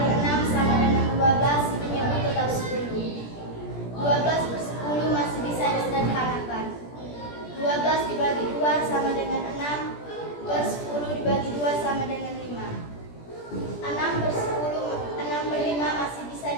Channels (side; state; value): right; late; 17 ms